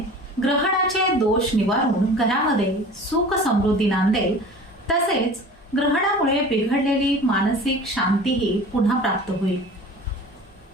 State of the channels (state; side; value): normal; both; correlation 0.41